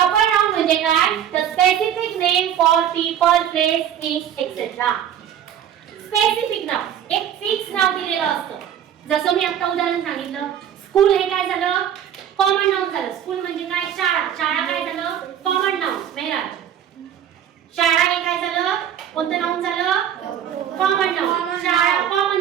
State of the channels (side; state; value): left; quieter; 9.8 dB